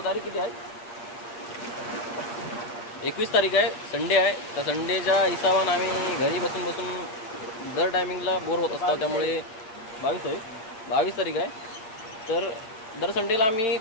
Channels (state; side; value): late; right; 8.8 ms